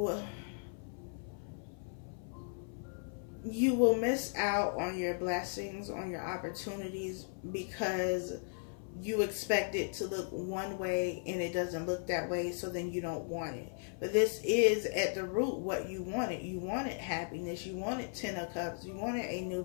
will miss out on your blessings, on your opportunities, because you expect it to look one way and it doesn't look that way, so then you don't want it. But this is at the root what you wanted. You wanted happiness. You wanted 10 of Cups. You wanted a new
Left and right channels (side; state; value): right; silent; 53 dB below the other